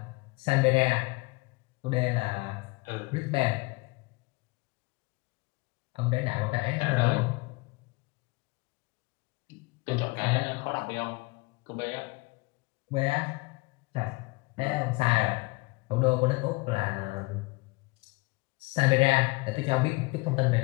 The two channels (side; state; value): right; quieter; 25.4 dB